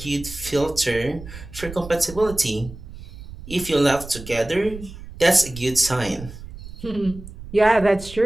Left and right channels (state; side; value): noise; right; rumble, 14 dB below the sound